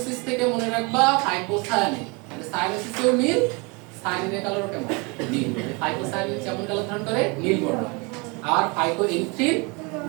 থেকে মনে রাখবা হাইপোসায়ানিন, মানে সায়ানোসিসেও নীল, সায়ানিনের কালারও কেমন নীল, মানে হাইপোসায়ানিন যেমন কালার ধারণ করে নীল বর্ণ, আর হাইপোএরিথ্রিন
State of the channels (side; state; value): left; quieter; 29.3 dB